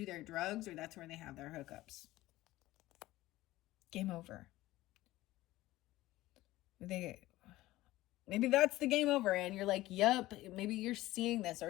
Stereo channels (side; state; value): right; quieter; 17.0 dB